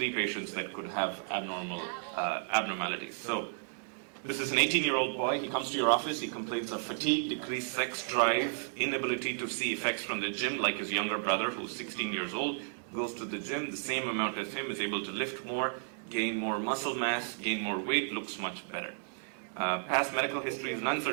patients that could have abnormalities. So this is an 18-year-old boy. He comes to your office. He complains of fatigue, decreased sex drive, inability to see effects from the gym, like his younger brother, who's 16 years old, goes to the gym the same amount as him, is able to lift more, gain more muscle mass, gain more weight, looks much better. Past medical histories, none.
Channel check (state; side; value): silent; left; digital silence